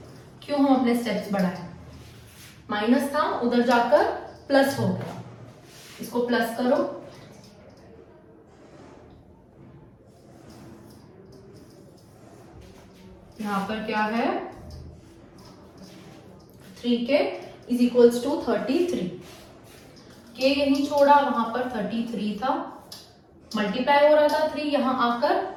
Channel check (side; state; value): both; identical; correlation 1.00